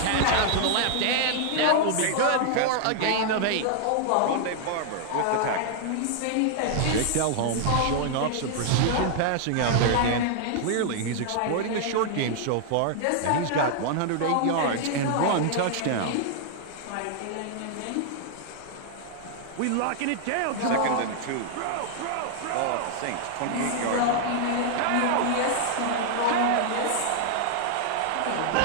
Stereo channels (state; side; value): different; both; correlation -0.01